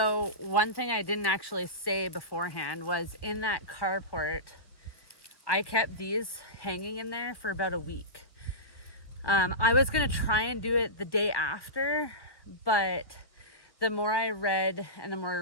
one thing I didn't actually say beforehand was, in that carport, I kept these hanging in there for about a week. I was going to try and do it the day after, but the more I read and the more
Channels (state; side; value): late; right; 1.5 ms